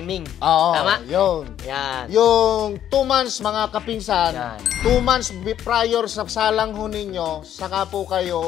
Tama? Yun. Yan. Yung 2 months, mga kapinsan, 2 months prior sa salang ho ninyo, saka po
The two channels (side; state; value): right; quieter; 10.6 dB